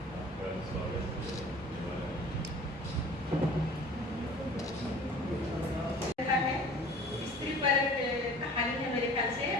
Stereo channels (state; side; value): normal; both; correlation 0.45